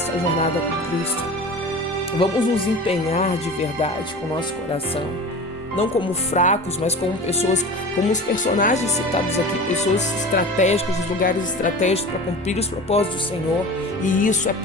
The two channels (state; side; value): normal; both; correlation 0.35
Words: jornada com Cristo. Vamos nos empenhar de verdade com o nosso coração. não como fracos, mas como pessoas, como os personagens citados aqui, pessoas estratégicas, os lugares estratégicos para cumprir os propósitos do Senhor. E isso é